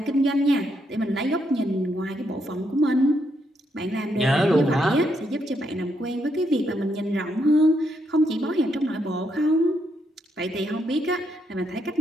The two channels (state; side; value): normal; both; correlation 0.77